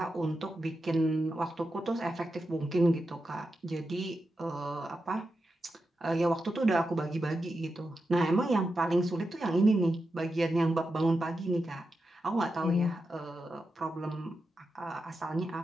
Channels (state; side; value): normal; both; correlation 0.89